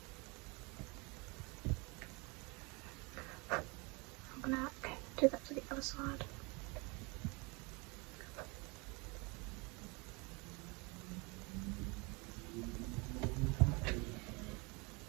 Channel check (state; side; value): quieter; left; 28.5 dB